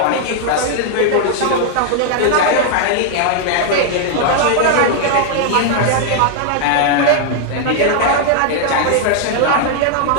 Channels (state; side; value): different; both; correlation 0.00